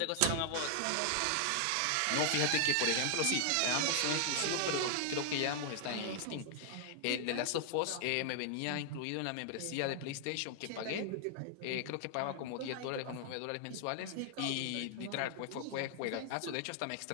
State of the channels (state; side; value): different; both; correlation 0.00